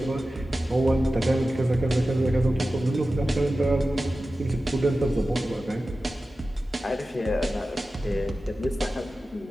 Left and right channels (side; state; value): both; normal; correlation 0.94